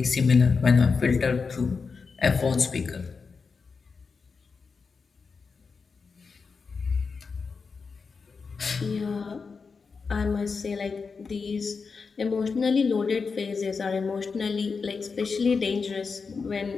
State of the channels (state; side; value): quieter; right; 5.0 dB